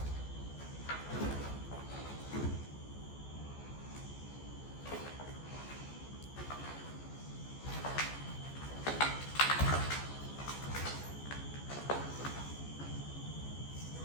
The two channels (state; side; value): late; right; 14 ms